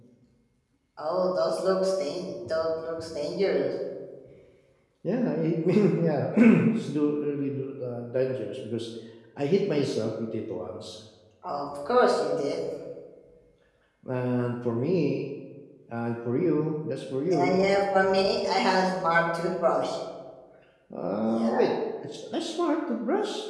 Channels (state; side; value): identical; both; correlation 1.00